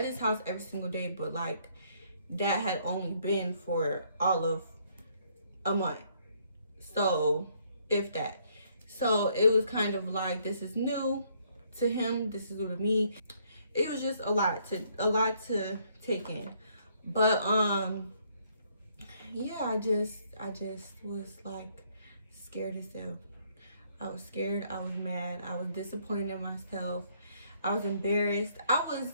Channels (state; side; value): inverted; both; correlation -0.68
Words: his house every single day, but like that had only been for all of a month. So if that. So it was kind of like, this is new to him, this is new to me. It was just a lot to take in. But yeah, I just was like scared as hell. I was scared, I was mad, I was disappointed in myself, I was embarrassed. I was